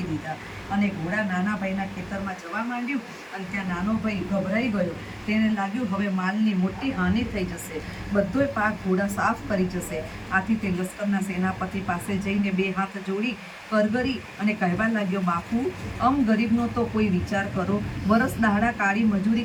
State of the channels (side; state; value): both; identical; correlation 1.00